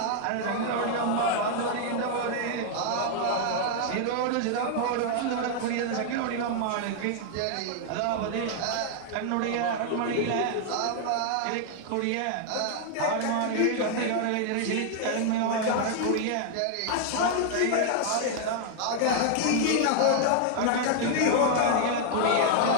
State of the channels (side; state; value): both; different; correlation 0.00